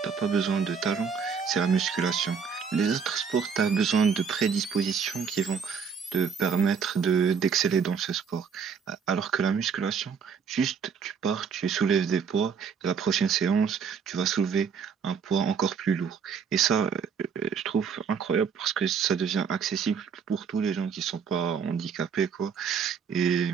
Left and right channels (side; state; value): left; quieter; 6.4 dB